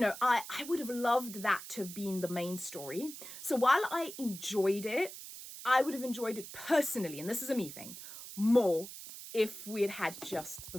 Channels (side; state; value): right; noise; hiss, 12 dB below the sound